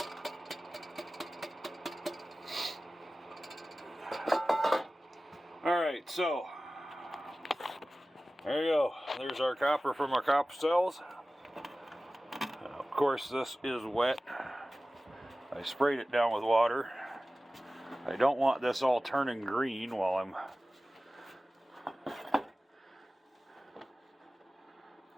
Alright, so there you go. There's our copper from our copper cells. Of course, this is wet. I sprayed it down with water. I don't want this all turning green while I'm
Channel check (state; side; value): normal; both; correlation 0.96